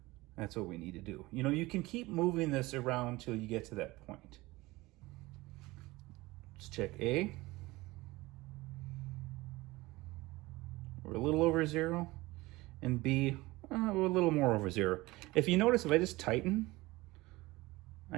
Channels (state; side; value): quieter; left; 20.5 dB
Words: That's what we need to do. You can keep moving this around till you get to that point. Let's check A. We're a little over 0. And B, we're a little more over 0. If you notice, if I just tighten,